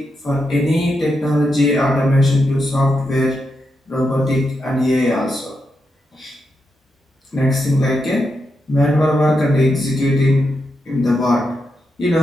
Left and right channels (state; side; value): normal; both; correlation 0.85